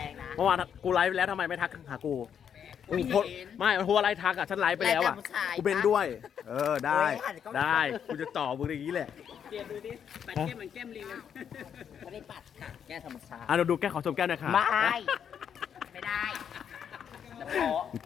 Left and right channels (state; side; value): quieter; right; 8.2 dB